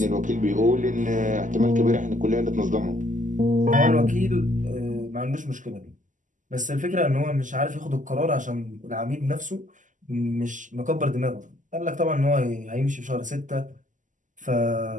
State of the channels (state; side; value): late; left; 0.37 ms